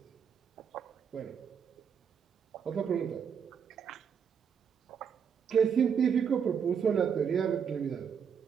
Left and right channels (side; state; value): left; quieter; 7.1 dB